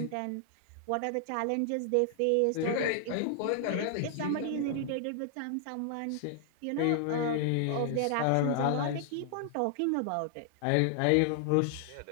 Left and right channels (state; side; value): different; both; correlation 0.00